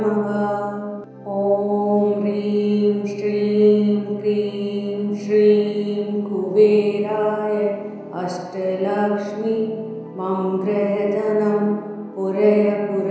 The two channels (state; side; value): identical; both; correlation 1.00